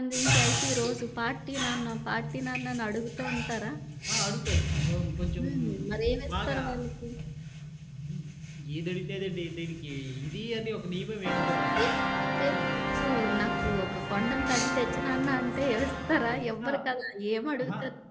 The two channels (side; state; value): both; identical; correlation 1.00